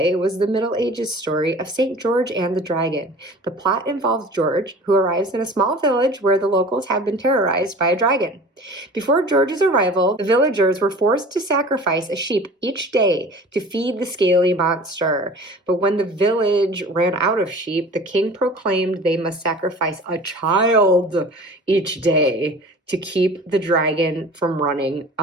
was the Middle Ages story of St. George and the Dragon. The plot involves George, who arrives in a small village where the locals have been terrorized by a dragon. Before George's arrival, the villagers were forced to sacrifice a sheep each day to feed the scaly monster. But when the village ran out of sheep, the king proclaimed they must sacrifice a child each day to keep the dragon from running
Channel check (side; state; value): both; normal; correlation 0.42